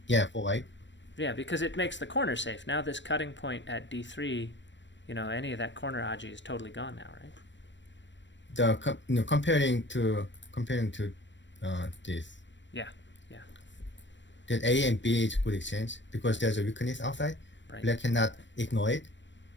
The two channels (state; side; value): late; right; 0.53 ms